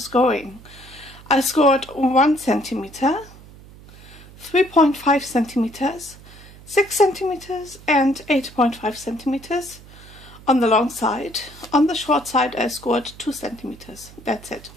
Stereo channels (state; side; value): noise; right; hum, 20 dB below the sound